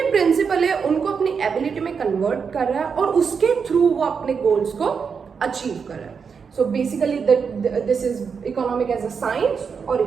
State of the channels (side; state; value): left; quieter; 6.0 dB